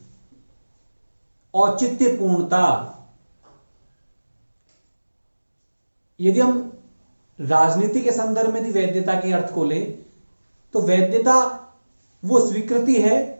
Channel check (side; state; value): both; inverted; correlation -1.00